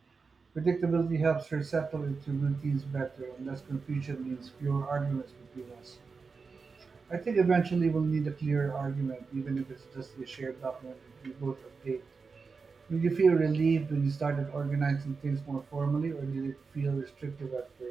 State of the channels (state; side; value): quieter; left; 4.8 dB